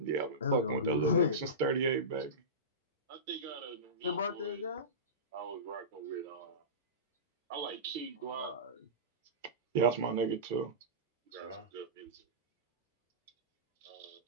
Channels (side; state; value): both; normal; correlation -0.20